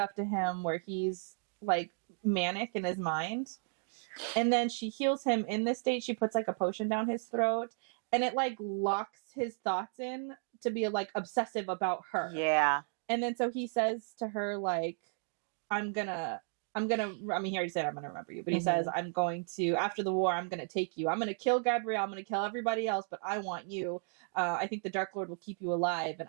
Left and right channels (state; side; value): silent; left; 55 dB below the other